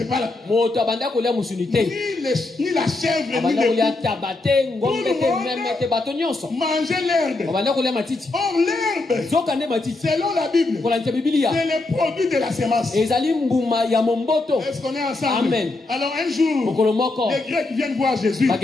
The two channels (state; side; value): quieter; right; 3.1 dB